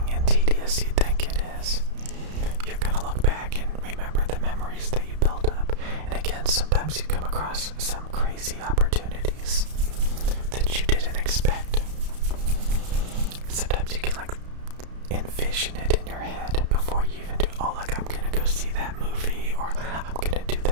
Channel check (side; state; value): left; late; 32 ms